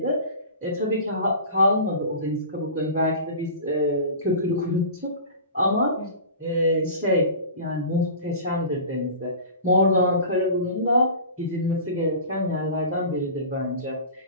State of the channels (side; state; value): both; inverted; correlation -0.36